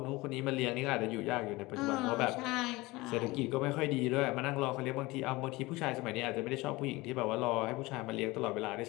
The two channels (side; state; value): right; quieter; 21.5 dB